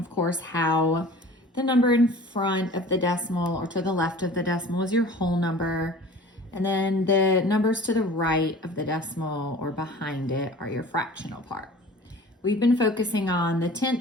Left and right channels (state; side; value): normal; both; correlation 0.43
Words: course, how the number in front of the decimal or to the left of the decimal is your whole number. And then the numbers to the right of the decimal or behind it are your fractional part. We've been focusing on the